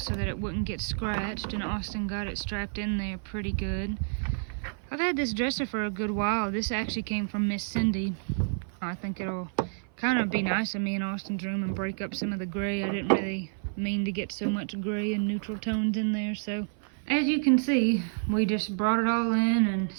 so that it wouldn't get scratched, and Austin got it strapped in there pretty good. I've had this dresser for a good while. This actually came from Miss Cindy. I think it'll kind of be nice in me and Austin's room and break up some of the gray. I didn't really mean to get so much gray and neutral tones in there. So as you can see, we just brought it all in and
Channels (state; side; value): silent; left; 55 dB below the other